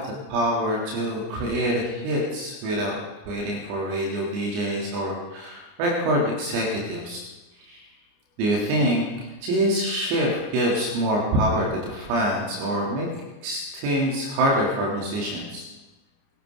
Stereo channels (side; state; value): left; late; 29 ms